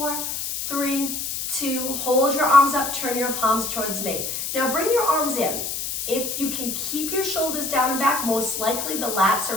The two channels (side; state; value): left; noise; hiss, 4 dB below the sound